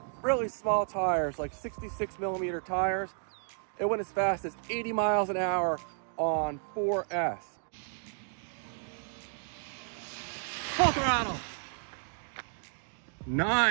really small tires, like 66 millimeter tires. It went as fast as 80 miles an hour on 4S. Full throttle.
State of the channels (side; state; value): left; silent; 56 dB below the other